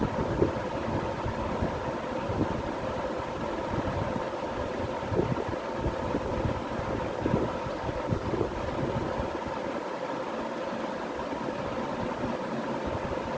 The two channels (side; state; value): both; identical; correlation 1.00